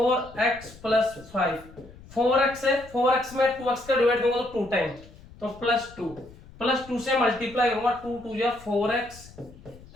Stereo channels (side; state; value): left; noise; rumble, 21 dB below the sound